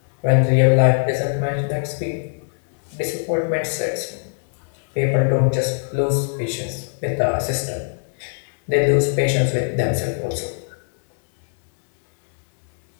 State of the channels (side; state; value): right; silent; 65 dB below the other